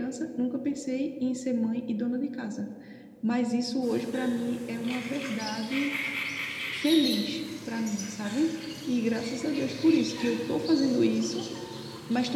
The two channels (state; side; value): identical; both; correlation 1.00